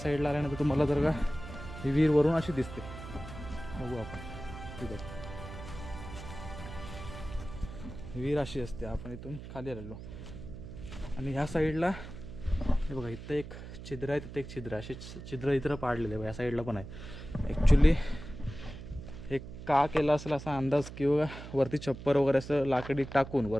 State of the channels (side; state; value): right; noise; hum, 12 dB below the sound